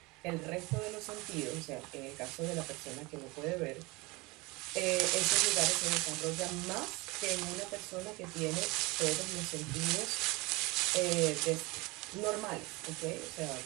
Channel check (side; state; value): left; quieter; 24.5 dB